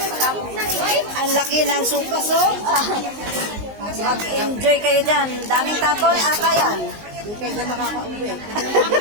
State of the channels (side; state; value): left; late; 19 ms